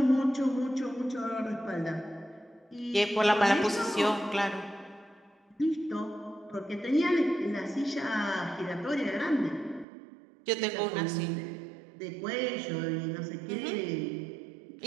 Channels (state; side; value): drops out; left; at 9.9 s